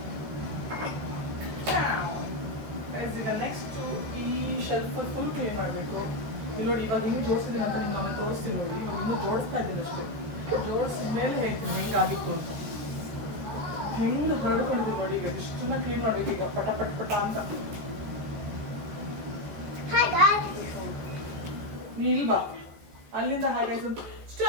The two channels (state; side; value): late; left; 14 ms